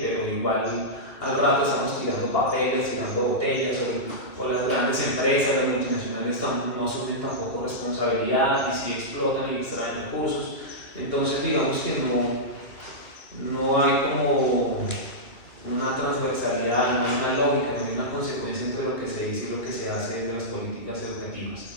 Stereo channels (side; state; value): right; late; 2.4 ms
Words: pero igual al rato estamos tirando papeles, tirando botellas, o las grandes empresas, las multinacionales no asumen tampoco responsabilidad, y si explotan y extraen recursos. Entonces, digamos que no hay como una transversalidad, no hay una lógica, no hay una consecuencia entre lo que se dice y lo que se hace desde las políticas educativas.